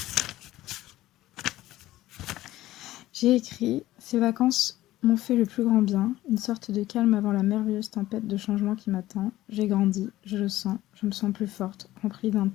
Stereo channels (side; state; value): right; quieter; 15.6 dB